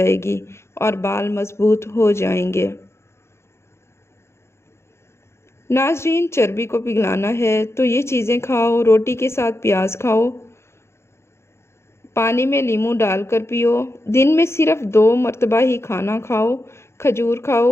گی اور بال مضبوط ہو جائیں گے۔ ناظرین، چربی کو پگھلانا ہے تو یہ چیزیں کھاؤ، روٹی کے ساتھ پیاز کھاؤ، پانی میں لیموں ڈال کر پیو، دن میں صرف 2 مرتبہ ہی کھانا کھاؤ، کھجور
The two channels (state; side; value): late; right; 0.13 ms